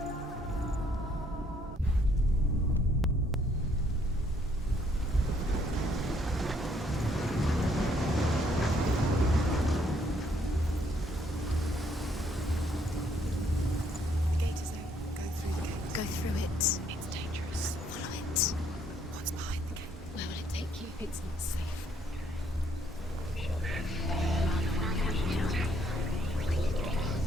Go through it. It's dangerous. Follow it. What's behind the gate? Where will it take you? It's not safe.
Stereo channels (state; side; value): normal; both; correlation 0.68